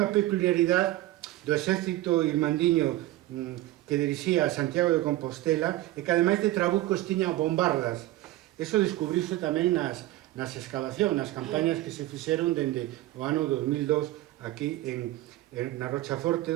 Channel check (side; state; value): left; quieter; 16.4 dB